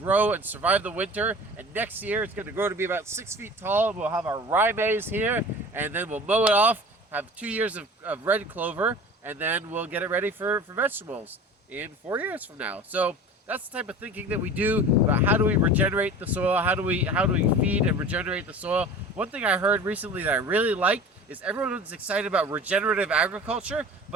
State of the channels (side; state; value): both; normal; correlation 0.39